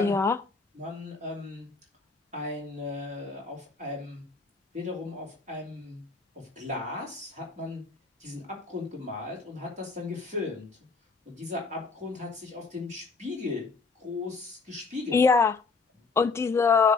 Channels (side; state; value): right; quieter; 4.4 dB